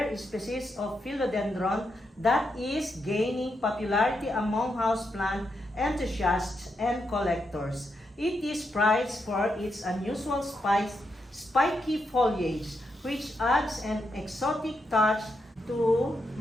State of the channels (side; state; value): both; normal; correlation 0.83